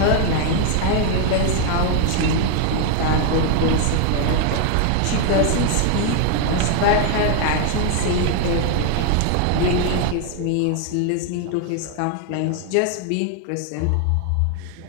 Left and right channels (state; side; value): different; both; correlation 0.00